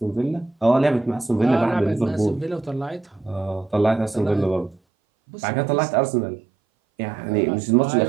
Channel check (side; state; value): left; drops out; at 4.8 s